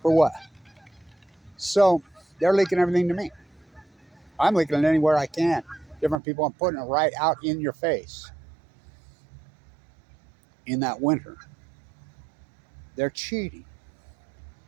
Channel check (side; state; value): left; drops out; at 6.2 s